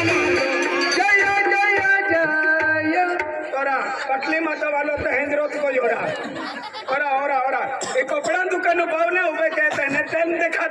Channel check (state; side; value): identical; both; correlation 1.00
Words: पटली माता वालों तो हेंद्रोत को जोड़ा और एक कपड़ा दुकान पावने उबे कहते हैं टाइम